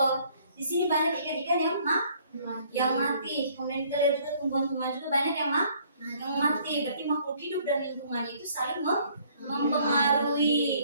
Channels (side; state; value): both; inverted; correlation -0.61